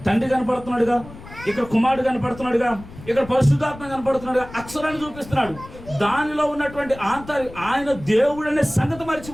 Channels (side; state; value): left; noise; rumble, 17 dB below the sound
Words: తండ్రి కనపడుతున్నాడుగా, ఇక్కడ కుమారుడు కనపడుతున్నాడుగా, ఇక్కడ పరిశుద్ధాత్మ కనపడుతున్నాడుగా, అక్షరాన్ని చూపిస్తున్నాడు. దానిలో ఉన్నటువంటి ఆయన దేవుడు అనే సంగతి